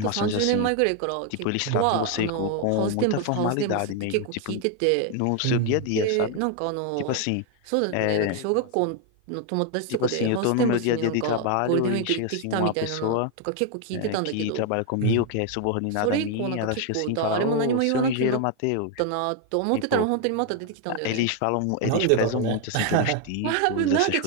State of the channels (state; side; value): different; both; correlation 0.01